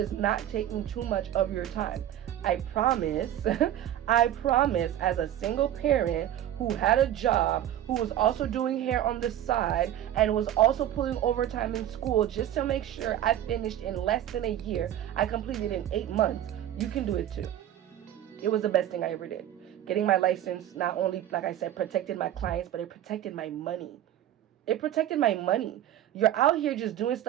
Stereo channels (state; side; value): quieter; left; 11.8 dB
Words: not taking too much of your time. I promise, as a single parent who had a job, who was also doing hair on the side, and was also pulling overtime in school just to make sure I finished in less than a year. I completed in 8 months. You can do it too. It was the best thing I ever did. Getting my license not only, like I said, protected my clients, but it protected my money. It protected my money. You're out here just doing